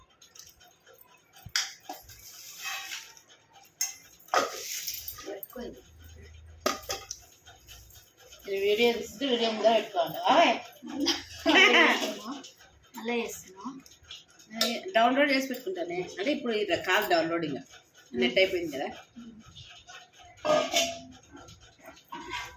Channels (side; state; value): both; identical; correlation 1.00